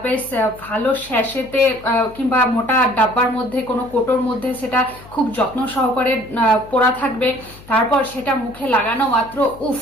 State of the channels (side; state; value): left; noise; hum, 21 dB below the sound